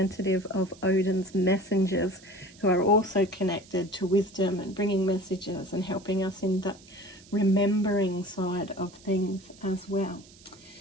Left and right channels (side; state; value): right; noise; hiss, 24 dB below the sound